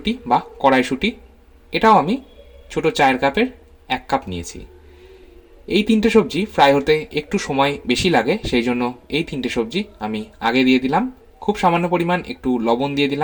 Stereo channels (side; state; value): both; identical; correlation 1.00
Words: বা কড়াইশুঁটি। এটাও আমি ছোটো চায়ের কাপের 1 কাপ নিয়েছি। এই 3টে সবজি ফ্রাই হতে একটু সময় বেশি লাগে, সেই জন্য এই 3টে সবজি আমি আগে দিয়ে দিলাম। খুব সামান্য পরিমাণ একটু লবণ দিয়ে